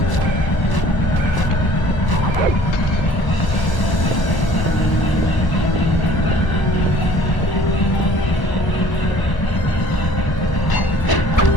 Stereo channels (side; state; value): right; late; 1.0 ms